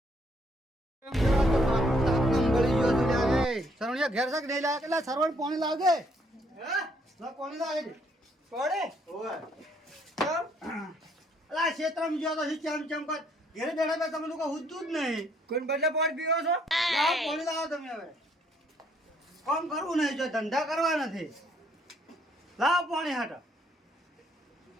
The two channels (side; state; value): both; normal; correlation 0.68